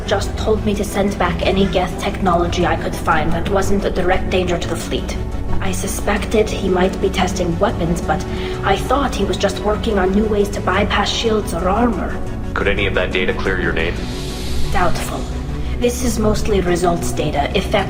just told me to send back any Geth technology I could find that wasn't a direct danger to the fleet. I suspected he might be testing weapons, but I thought he was just working on new ways to bypass shields or armor. Could any of that data clear your name? Doubtful. This is mostly results data,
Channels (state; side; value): identical; both; correlation 1.00